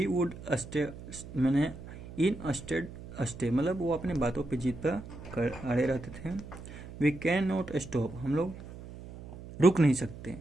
वुड स्टे, मैंने इन स्टे मतलब वो अपने बातों पे जीत पर अड़े रहते थे। वी कैन नॉट स्टॉप, हम लोग रुक नहीं सकते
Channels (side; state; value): right; noise; hum, 14 dB below the sound